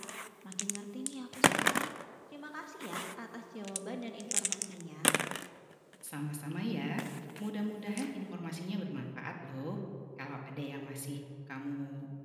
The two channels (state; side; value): identical; both; correlation 1.00